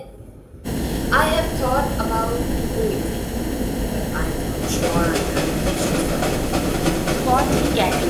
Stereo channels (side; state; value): both; identical; correlation 1.00